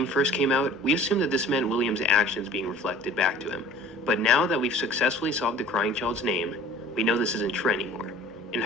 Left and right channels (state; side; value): normal; both; correlation 0.46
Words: first came out, we assumed that this meant William's actions being reflected back to him. But now that we've successfully solved the crying child's name, we know this isn't true anymore. In